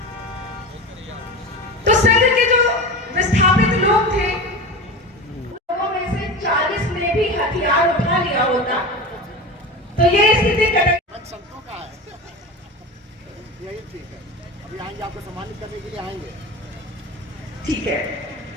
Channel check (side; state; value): both; normal; correlation 0.28